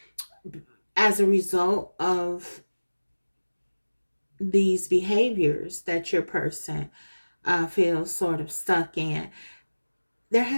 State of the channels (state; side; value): inverted; both; correlation -1.00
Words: as a result of these behaviors that your person feels sort of stuck in, there